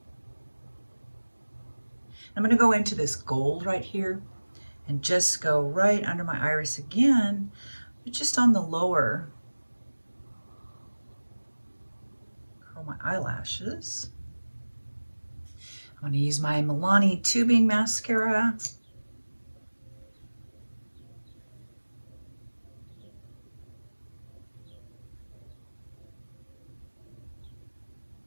I'm going to go into this gold right here and just go right under my iris again, but just on the lower, curl my eyelashes. I'm going to use my Milani tubing mascara.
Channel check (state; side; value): inverted; both; correlation -1.00